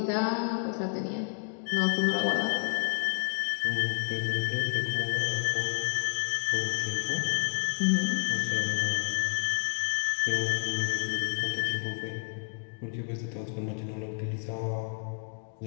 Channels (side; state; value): right; silent; 55 dB below the other